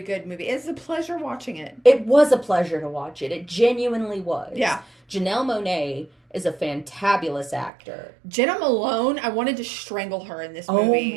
movie. It's a pleasure watching it. It was a pleasure to watch it. It genuinely was. Yeah. Janelle Monáe is a fantabulous actor. Jenna Malone, I wanted to strangle her in this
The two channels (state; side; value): drops out; left; at 7.7 s